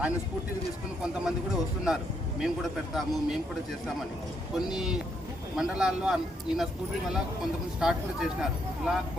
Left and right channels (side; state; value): both; normal; correlation 0.75